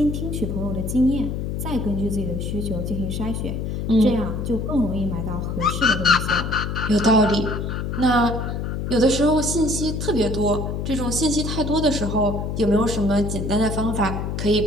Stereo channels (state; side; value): noise; left; hum, 3 dB below the sound